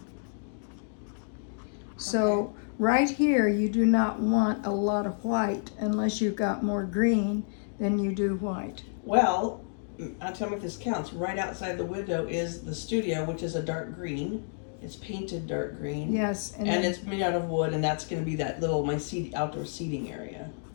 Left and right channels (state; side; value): silent; right; digital silence